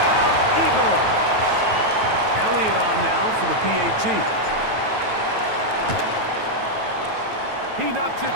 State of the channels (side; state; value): left; late; 9.2 ms